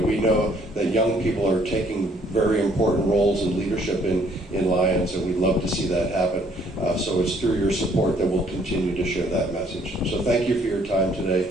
know that young people are taking very important roles in leadership in Lions, and we'd love to see that happen. So it's through your support that we'll continue to share that message. So thank you for your time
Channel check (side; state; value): both; normal; correlation 0.64